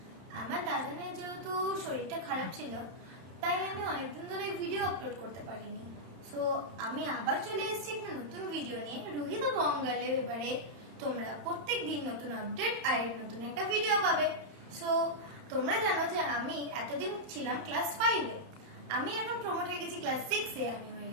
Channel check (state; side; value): late; left; 31 ms